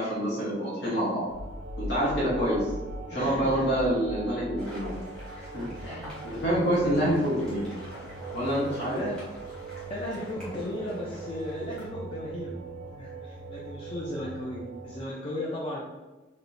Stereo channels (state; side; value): normal; both; correlation 0.49